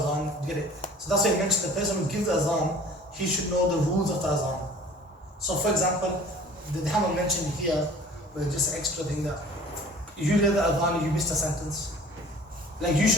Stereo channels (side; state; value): both; normal; correlation 0.48